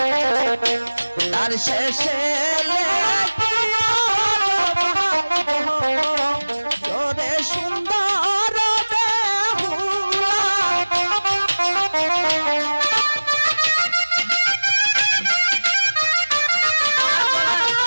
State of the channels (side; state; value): both; inverted; correlation -1.00